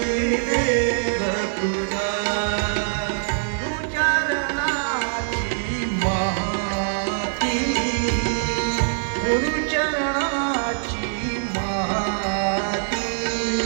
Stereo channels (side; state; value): left; silent; digital silence